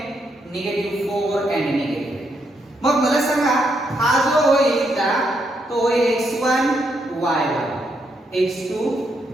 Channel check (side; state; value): both; normal; correlation 0.78